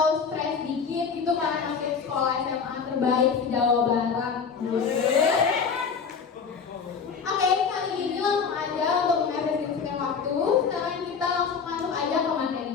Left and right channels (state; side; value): quieter; right; 5.9 dB